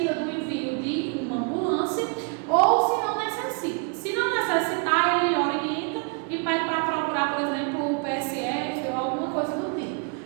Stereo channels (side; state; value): left; quieter; 36.8 dB